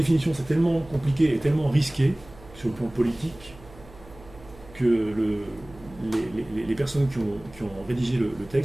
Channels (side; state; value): right; noise; hum, 21 dB below the sound